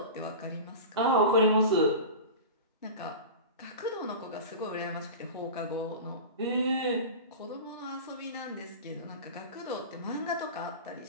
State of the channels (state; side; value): inverted; both; correlation -0.31